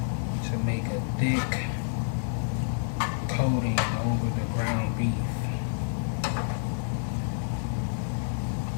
to make a thick coating over the ground beef.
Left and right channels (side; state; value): right; silent; 59 dB below the other